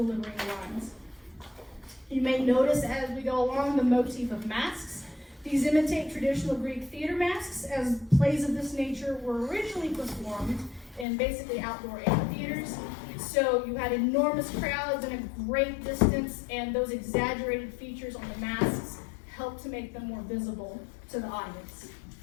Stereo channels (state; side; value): drops out; right; at 11.1 s